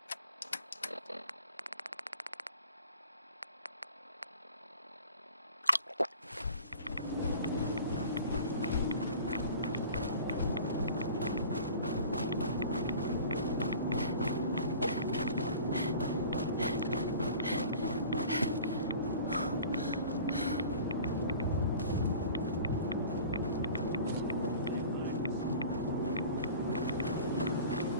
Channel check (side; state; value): both; inverted; correlation -0.43